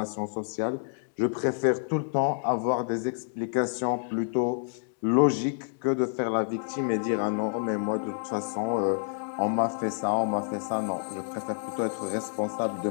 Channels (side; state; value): right; silent; digital silence